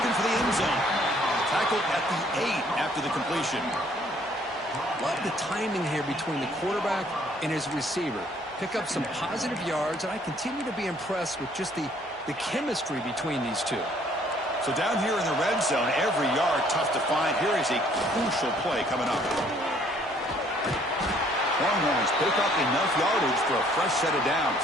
for the end zone. Tackled at the 8 after the completion. Love the timing here between the quarterback and his receiver. Pick up some positive yards, and I continue to be impressed with just the chemistry between these two. So down here in the red zone, every yard tough to find. Here is a crucial play coming up. Longhorns pick up enough yardage for a fresh set of downs.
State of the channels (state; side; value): normal; both; correlation 0.62